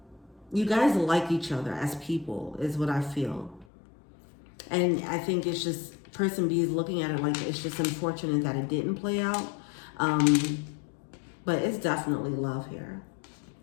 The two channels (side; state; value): right; drops out; at 3.7 s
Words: You guys like each other as people, is what I feel. And I think it's just, person B is looking at it like it's just unfortunate that it didn't play out. But it's definitely love here.